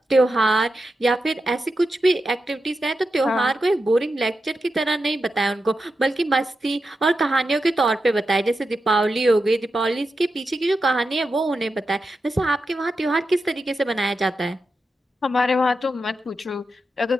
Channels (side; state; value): both; normal; correlation 0.89